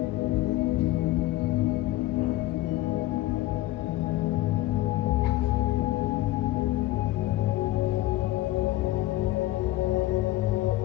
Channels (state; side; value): quieter; right; 16.6 dB